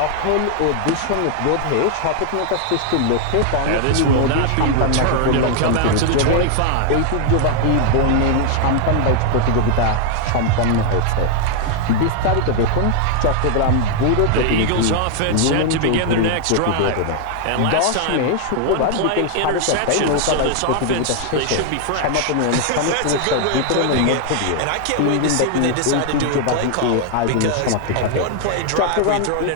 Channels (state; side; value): different; both; correlation 0.00